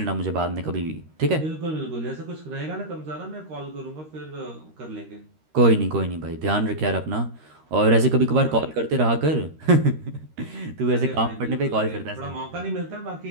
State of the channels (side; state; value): left; late; 13 ms